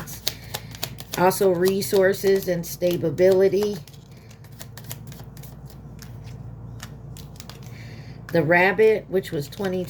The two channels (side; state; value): both; identical; correlation 1.00